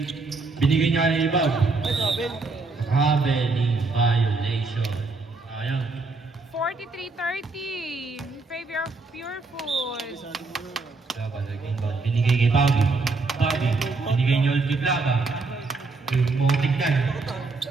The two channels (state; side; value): quieter; left; 3.8 dB